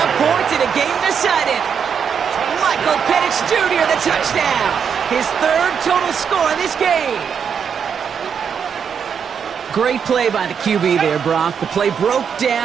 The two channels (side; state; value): left; quieter; 7.1 dB